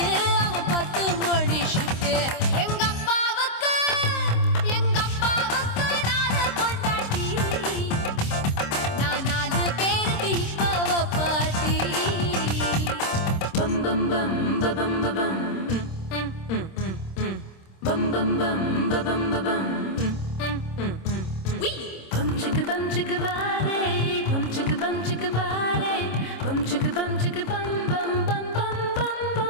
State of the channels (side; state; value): right; late; 26 ms